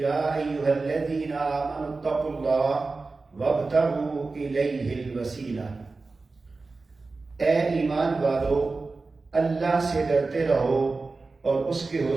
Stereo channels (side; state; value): left; quieter; 3.8 dB